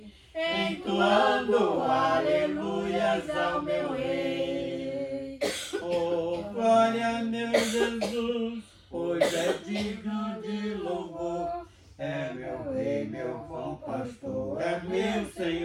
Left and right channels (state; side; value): identical; both; correlation 1.00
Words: entoando aleluias ao meu Rei. Oh, glória, meu Jesus, pois é digno de louvor. É meu Rei, meu bom pastor, é meu